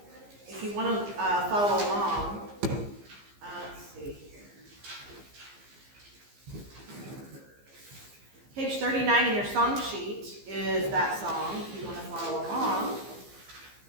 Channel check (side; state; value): left; late; 15 ms